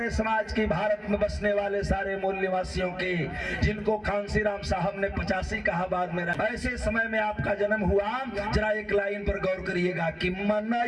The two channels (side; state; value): both; identical; correlation 1.00